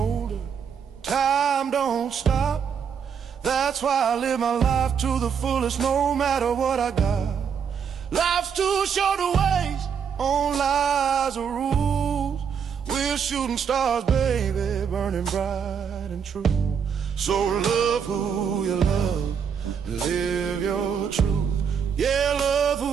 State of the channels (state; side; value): quieter; left; 7.1 dB